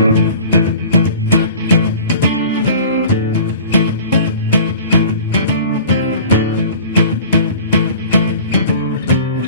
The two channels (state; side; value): inverted; both; correlation -0.43